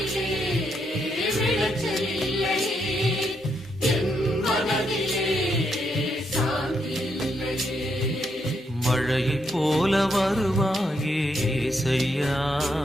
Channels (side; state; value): both; normal; correlation 0.78